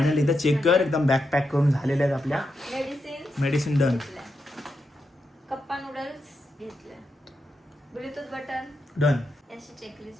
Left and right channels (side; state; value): both; normal; correlation 0.85